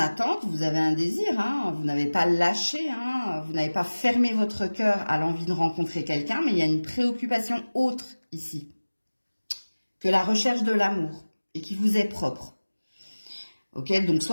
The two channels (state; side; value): inverted; both; correlation -1.00